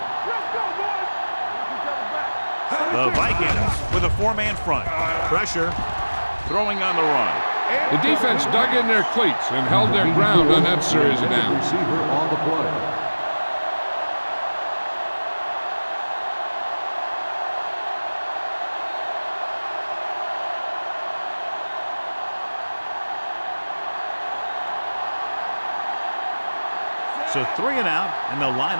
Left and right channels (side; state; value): both; inverted; correlation -1.00